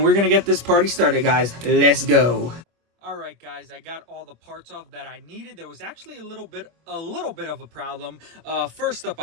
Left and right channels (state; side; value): late; left; 24 ms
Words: we're gonna get this party started, guys. Let's go. Alright, guys, I got all the parts off that I needed. There was actually a little bit of a problem. First up,